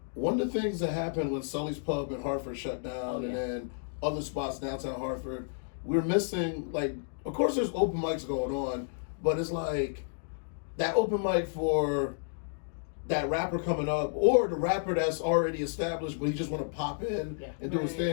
one of the things that happened when Sully's Pub in Hartford shut down, Oh, yeah. and then other spots downtown Hartford, we're missing, like, of course there's open mics going on, but it's like that open mic for that rapper coming up, or the rapper that's already established, but he just want to pop in and do his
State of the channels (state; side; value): silent; right; digital silence